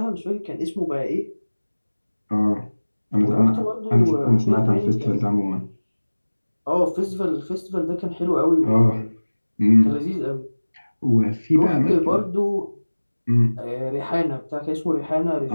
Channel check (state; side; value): inverted; both; correlation -1.00